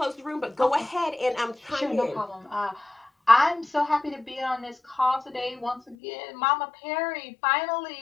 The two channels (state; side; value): drops out; right; at 6.0 s